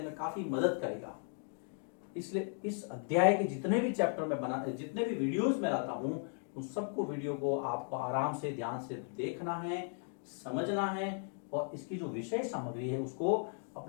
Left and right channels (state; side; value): silent; right; 54 dB below the other